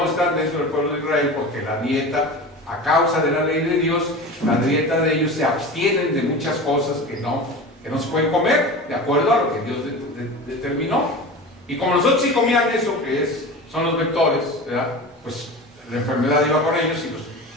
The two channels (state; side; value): normal; both; correlation 0.32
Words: están dentro del pueblo de Israel porque la dieta, a causa de la ley de Dios, la dieta de ellos se abstienen de muchas cosas que no se pueden comer, de acuerdo a lo que Dios determinó. Y como nosotros sí comían eso que son los vectores, ¿verdad? Pues la enfermedad iba con ellos